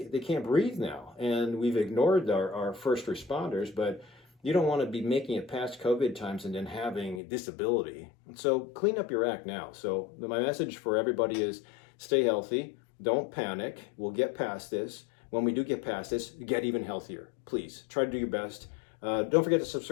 can't breathe now. And we've ignored our first responders, but you don't want to be making it past COVID times and then having disability. So clean up your act now. So my message for everybody is stay healthy. Don't panic. We'll get past this. When we do get past this, get even healthier. Please try to do your best. Don't forget to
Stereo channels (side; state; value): right; drops out; at 7.2 s